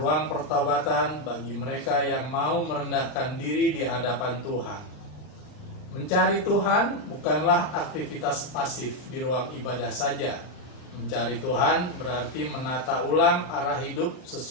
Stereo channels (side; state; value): right; late; 39 ms